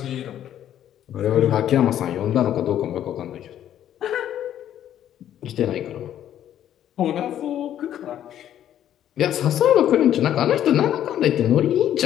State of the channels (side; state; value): right; quieter; 11.0 dB